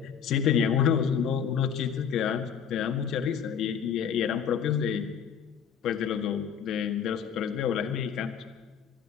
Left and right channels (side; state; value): right; quieter; 7.7 dB